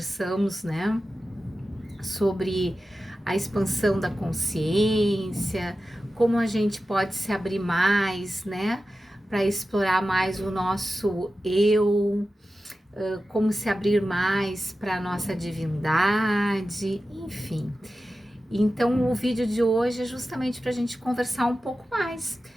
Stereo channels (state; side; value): normal; both; correlation 0.93